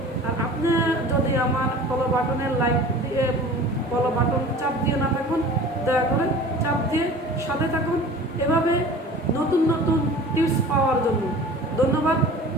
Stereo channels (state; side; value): normal; both; correlation 0.42